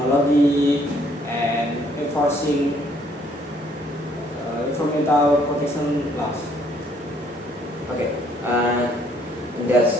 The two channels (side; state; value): both; normal; correlation 0.65